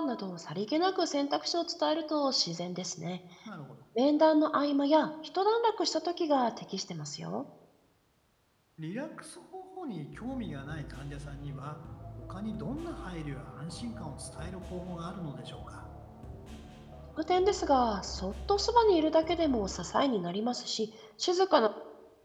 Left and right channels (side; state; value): both; identical; correlation 1.00